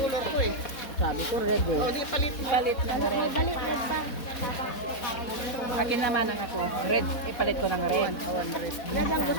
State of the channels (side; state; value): right; late; 4.1 ms